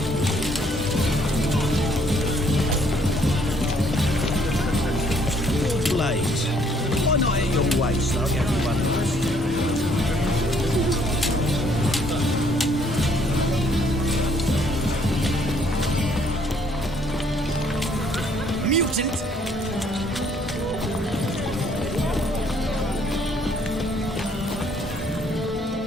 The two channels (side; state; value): both; normal; correlation 0.65